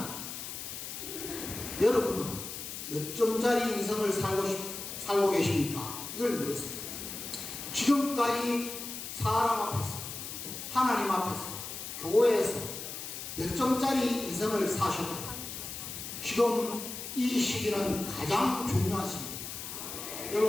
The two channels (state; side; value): noise; left; hiss, 8 dB below the sound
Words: 여러분은 몇 점짜리 인생을 살고 계십니까? 이걸 물었습니다. 지금까지 사람 앞에서, 하나님 앞에서, 교회에서 몇 점짜리 인생을 사셨다. 지금 이 시기는 가장 중요한 시기입니다.